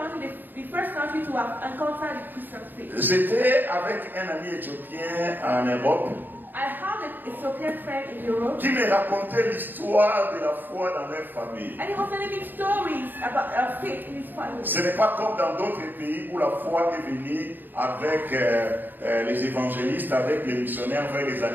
the first country to have encountered the Christian faith. J'étais avec un ami éthiopien en Europe I have an Ethiopian friend in Europe, qui me racontait l'histoire de la foi dans leur famille. and he was telling me stories about faith in his family. Ce n'est pas comme dans d'autres pays où la foi est venue avec les évangélistes, avec les missionnaires vers les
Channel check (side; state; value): left; late; 0.091 ms